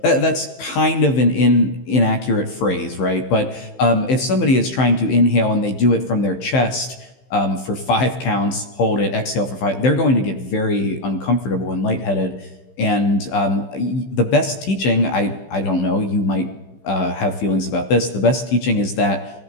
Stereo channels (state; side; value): late; right; 15 ms